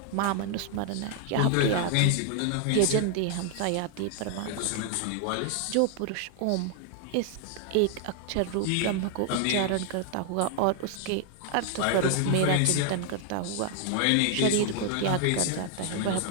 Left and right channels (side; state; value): both; different; correlation 0.00